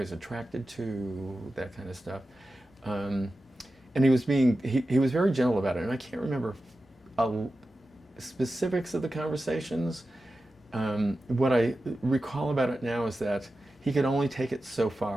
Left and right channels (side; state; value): both; normal; correlation 0.93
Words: attracted to, that kind of stuff. And he was very gentle about it, and I can't remember specifics of the conversations. What I recall about it now is that he could only take it so